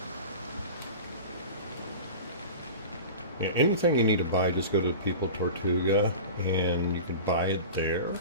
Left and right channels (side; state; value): both; inverted; correlation -0.33